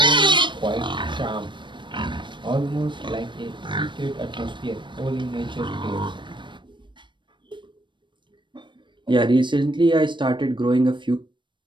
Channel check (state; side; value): late; left; 0.23 ms